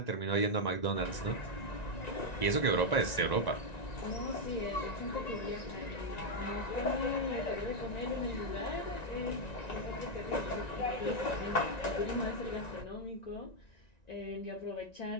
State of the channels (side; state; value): right; late; 1.9 ms